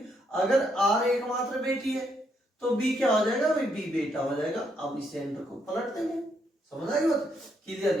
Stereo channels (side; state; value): both; normal; correlation 0.75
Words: अगर आर एकमात्र बेटी है तो बी क्या हो जाएगा भाई, बी बेटा हो जाएगा। अब इस सेंटर को पलट देंगे, समझ आई बात, क्लियर